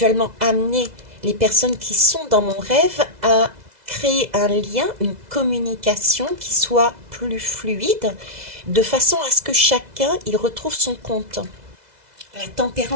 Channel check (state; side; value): late; left; 2.0 ms